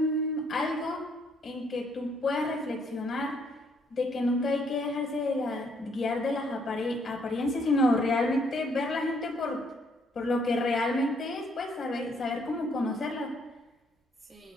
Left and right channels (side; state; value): both; normal; correlation 0.68